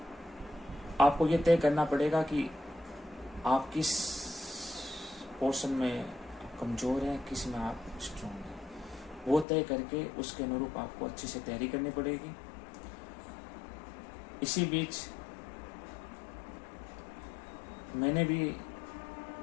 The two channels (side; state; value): right; drops out; at 9.5 s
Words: आपको ये तय करना पड़ेगा कि आप किस पोर्शन में कमज़ोर हैं, किस में आप स्ट्रॉन्ग हैं, वो तय करके उसके अनुरूप आपको अच्छे से तैयारी करनी पड़ेगी। इसी बीच मैंने भी